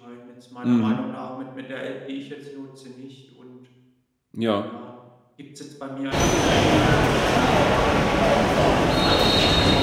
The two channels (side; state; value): both; identical; correlation 1.00